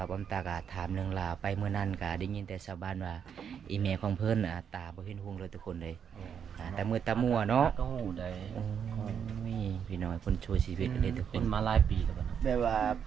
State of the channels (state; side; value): quieter; left; 7.8 dB